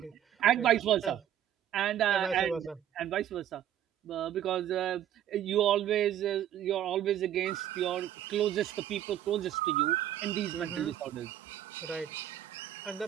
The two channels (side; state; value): left; quieter; 11.0 dB